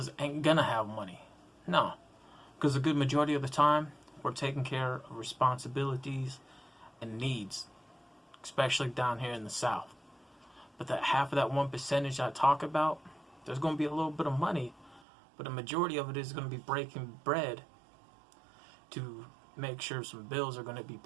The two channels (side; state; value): left; drops out; at 15.0 s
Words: ain't going to have money. No. Because a good majority of the time, we're taking care of responsibilities and needs, especially down here in the South. But that half of that 1% I talk about, there's going to be a little bit of money, but a majority of it is going to be breaking bread to make sure some bills are going to be